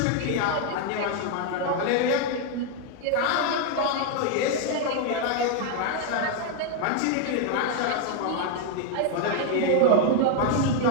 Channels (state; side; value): different; both; correlation 0.01